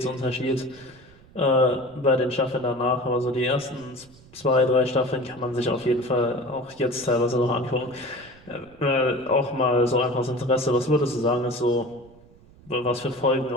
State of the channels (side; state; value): right; noise; rumble, 25 dB below the sound